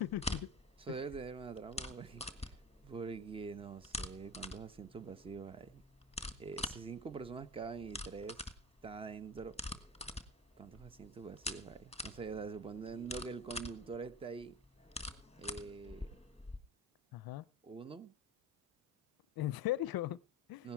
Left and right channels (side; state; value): both; normal; correlation 0.28